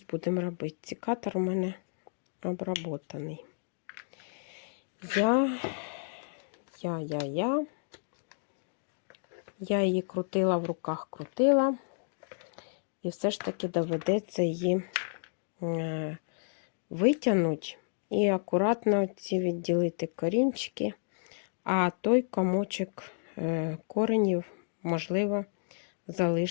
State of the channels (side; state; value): right; silent; digital silence